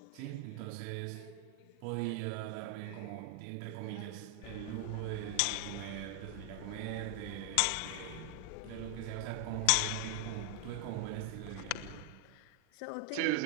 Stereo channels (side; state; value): both; different; correlation 0.00